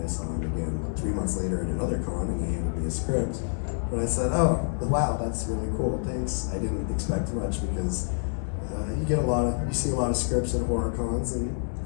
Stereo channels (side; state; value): right; silent; digital silence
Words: saw him again 3 months later at another con, and he handed me a script. And I said, oh, wow, that's really cool, thanks. I didn't expect much because you see a lot of scripts at horror cons, and